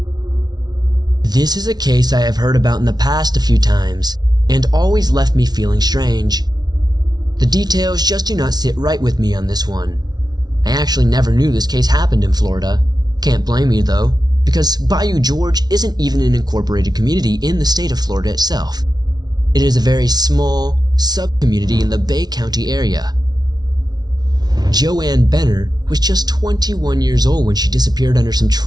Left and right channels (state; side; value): late; left; 0.19 ms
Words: This is a case I have heard about in the past a few times, and always left me feeling strange. The details just do not sit right with me on this one. I actually never knew this case happened in Florida. Can't blame me though, because Bayou George isn't even an incorporated community in the state of Florida itself. It is a very small sub-community in the Bay County area. Joanne Benner was just 21 years old when she disappeared under some